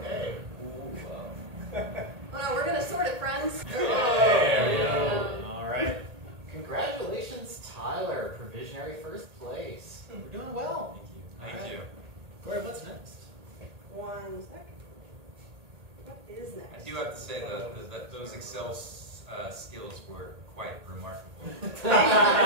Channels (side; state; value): left; late; 1.8 ms